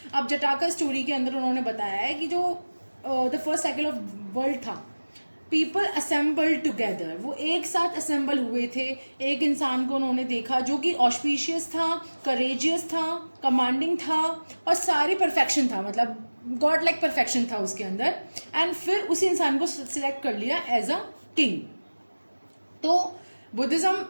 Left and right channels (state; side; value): inverted; both; correlation -1.00